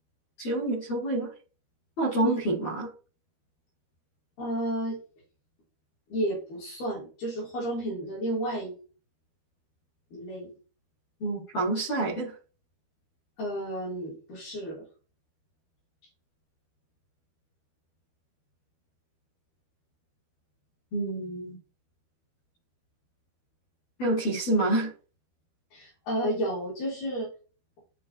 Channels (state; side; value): late; right; 12 ms